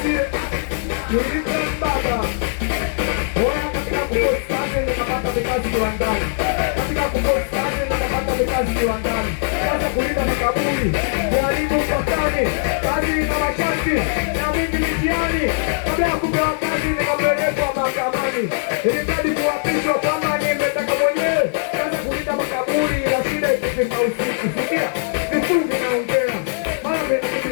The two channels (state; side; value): silent; right; digital silence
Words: Nilipembaba. Oya katika kupost kazi nikapata vikazi viwandani. Katika kupost kazi nikapata vikazi viwandani. Kaza kulinda makaburi, kuharibu mpakani, kazi na masharti na mingi mitiani. Kabla ya kupewa kazi nikapelekwa mahakamani. Ilimradi kuapishwa kama nimetaka mwenyewe. Kaza kulinda makaburi ila shida ikifika usiku. Sikia, vifungi naongea, mara mengi